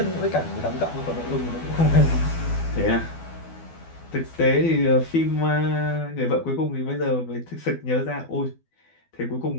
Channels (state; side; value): late; right; 12 ms